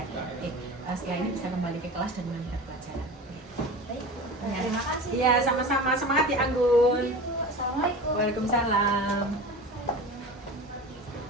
Oke. Setelah ini bisa kembali ke kelas dan melanjutkan pelajaran. Baik. Terima kasih. Iya, sama-sama. Semangat ya Anggun. Assalamualaikum. Waalaikumsalam.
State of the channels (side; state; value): both; normal; correlation 0.33